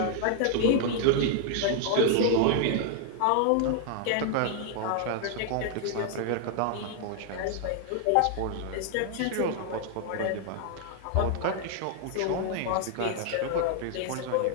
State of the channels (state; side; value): different; both; correlation 0.00